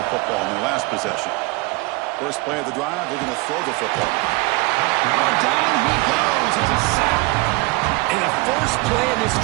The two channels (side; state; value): left; quieter; 24.2 dB